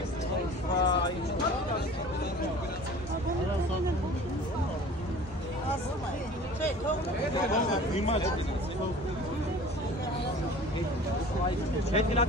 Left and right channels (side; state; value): both; normal; correlation 0.44